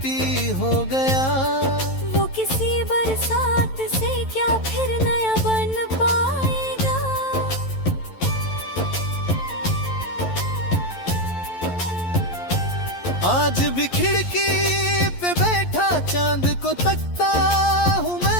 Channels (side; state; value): right; late; 11 ms